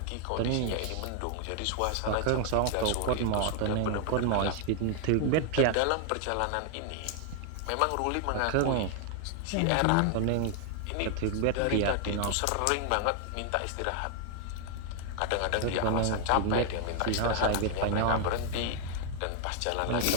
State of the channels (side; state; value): both; different; correlation 0.00